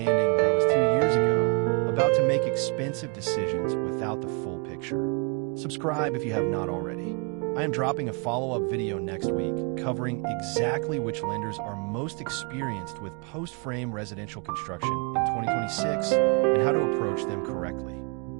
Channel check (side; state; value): left; quieter; 34.7 dB